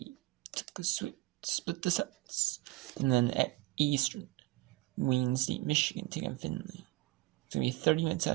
took a split the sets, and then at Eastern, Wayne State, Michigan taking Finley. It's gonna be 30 minutes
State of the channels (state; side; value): quieter; left; 19.3 dB